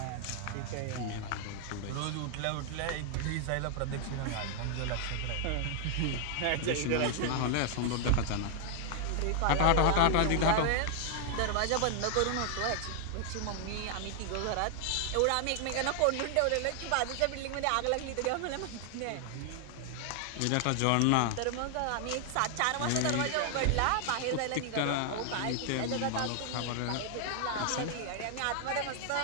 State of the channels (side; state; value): both; different; correlation 0.00